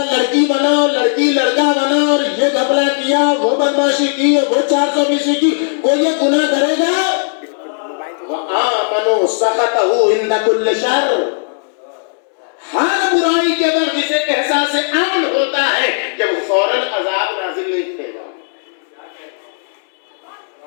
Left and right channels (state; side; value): silent; right; digital silence